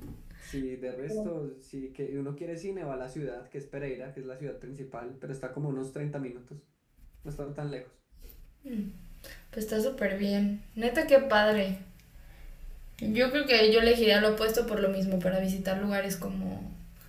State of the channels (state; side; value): identical; both; correlation 1.00